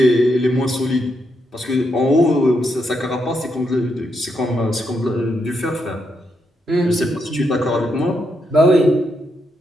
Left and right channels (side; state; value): both; normal; correlation 0.80